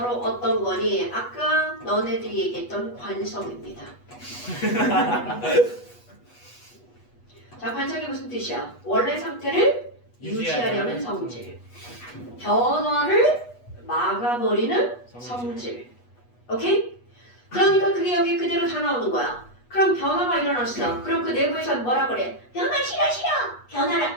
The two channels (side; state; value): right; late; 8.2 ms